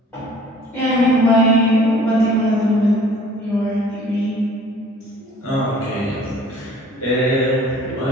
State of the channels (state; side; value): normal; both; correlation 0.52